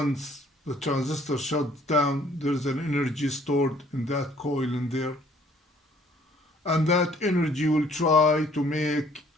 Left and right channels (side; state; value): both; normal; correlation 0.59